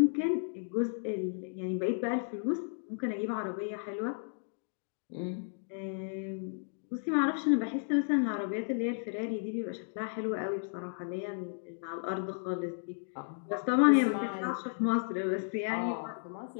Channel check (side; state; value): right; silent; digital silence